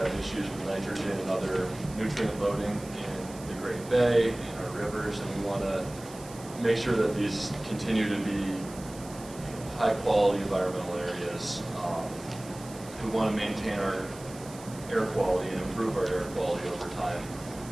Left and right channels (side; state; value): right; noise; hiss, 18 dB below the sound